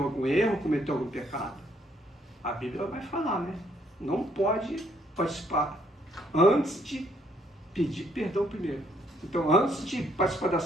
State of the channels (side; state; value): both; normal; correlation 0.69